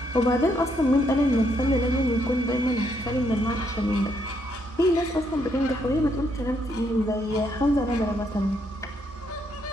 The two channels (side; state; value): both; normal; correlation 0.74